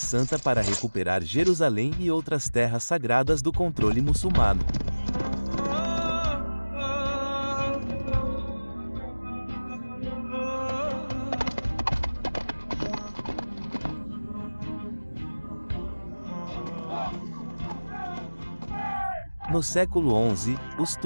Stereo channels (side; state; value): both; inverted; correlation -1.00